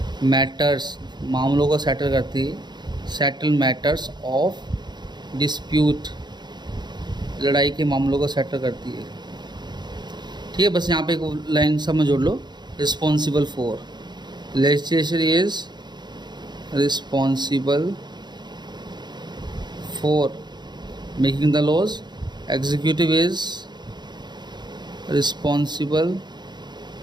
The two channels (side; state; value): left; late; 0.21 ms